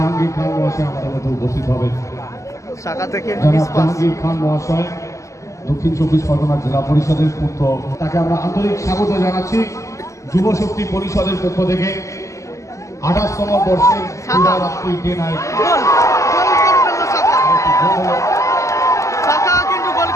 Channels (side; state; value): right; late; 0.15 ms